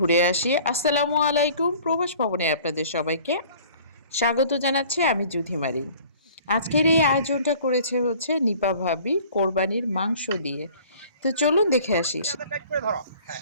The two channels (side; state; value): both; inverted; correlation -0.50